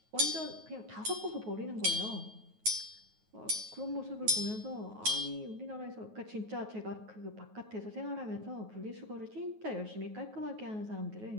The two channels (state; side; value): late; left; 9.3 ms